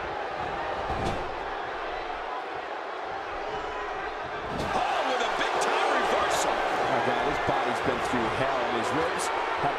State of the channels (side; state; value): both; identical; correlation 1.00